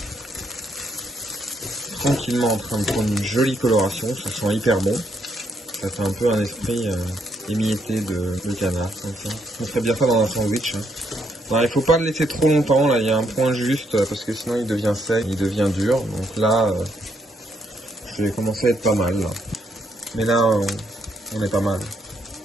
tranquillement en train de prendre une jolie coloration, ça sent hyper bon. Ça fait un peu un esprit émietté de canard, comme ça. On ferait bien ça dans un sandwich. Hein. Alors, il faut pas le laisser trop longtemps, là il y a un point juste, parce que sinon il devient sec, il devient dur. Donc là, je vais commencer à être pas mal. Là. Mais là, on est pas mal.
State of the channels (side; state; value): both; normal; correlation 0.75